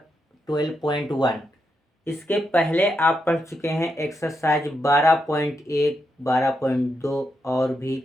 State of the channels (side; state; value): both; normal; correlation 0.83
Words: 12.1। इसके पहले आप पढ़ चुके हैं एक्सरसाइज 12.1, 12.2 और भी